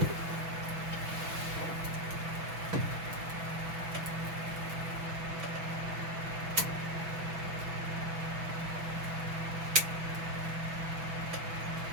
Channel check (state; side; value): late; left; 6.1 ms